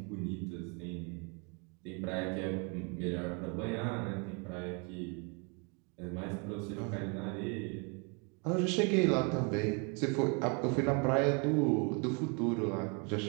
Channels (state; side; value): quieter; left; 34.4 dB